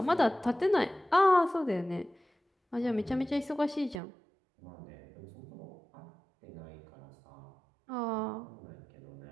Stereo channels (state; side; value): drops out; left; at 4.0 s